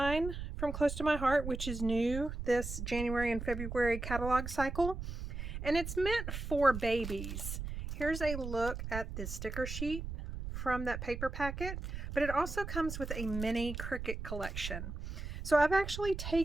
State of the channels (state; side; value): noise; right; rumble, 6 dB below the sound